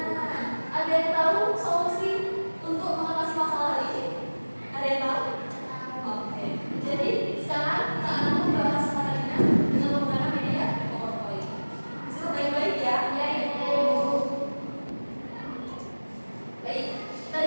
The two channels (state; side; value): inverted; both; correlation -1.00